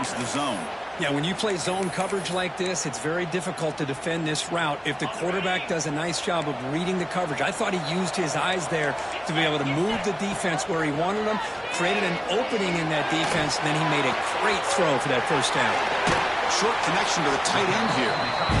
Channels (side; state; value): both; identical; correlation 1.00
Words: the zone. Yeah, when you play zone coverage like this, it's very difficult to defend this route if the quarterback does a nice job of reading the coverage. I thought he used his eyes there to be able to move the defense where he wanted them, created an opening in that defense, and then he made a great throw for that first down. Short connection to the tight end here.